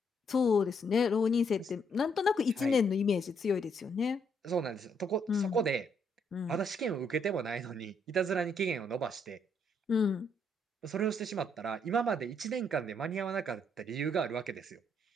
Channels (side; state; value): both; normal; correlation 0.72